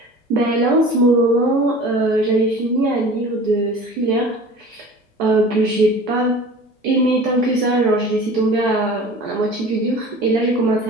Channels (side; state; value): both; normal; correlation 0.41